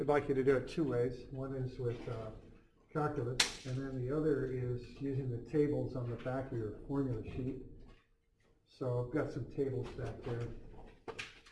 like you to do it two ways. One is with calculus, and then the other is using the tables on the back of your formula sheet. So I've got some tables back there.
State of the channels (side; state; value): both; identical; correlation 1.00